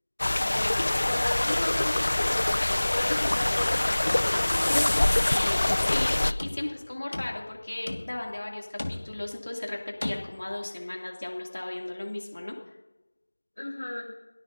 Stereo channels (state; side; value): inverted; both; correlation -1.00